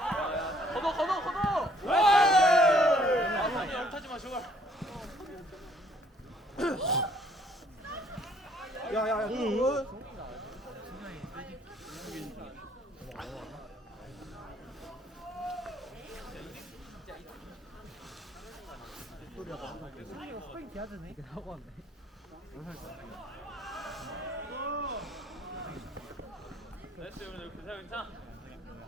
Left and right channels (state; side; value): normal; both; correlation 0.63